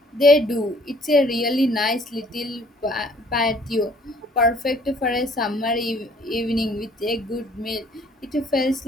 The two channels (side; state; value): both; normal; correlation 0.58